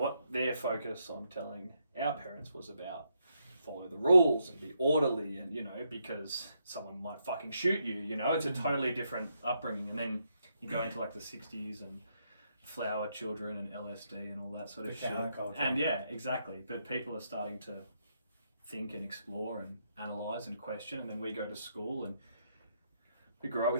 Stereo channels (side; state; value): both; inverted; correlation -0.78